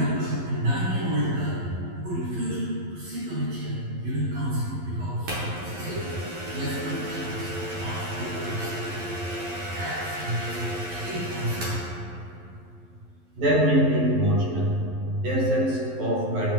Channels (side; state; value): left; late; 11 ms